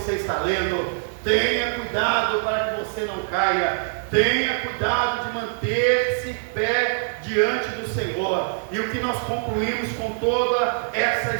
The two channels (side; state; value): left; silent; digital silence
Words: está lendo. Tenha cuidado para que você não caia, tenha cuidado de manter-se pé diante do Senhor. E o que nós concluímos com toda essa